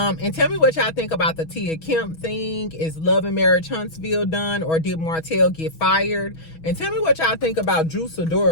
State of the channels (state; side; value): late; right; 6.2 ms